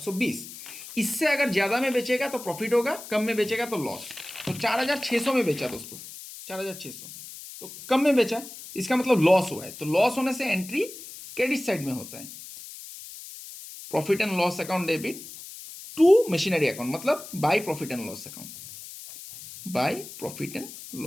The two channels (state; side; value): noise; left; hiss, 14 dB below the sound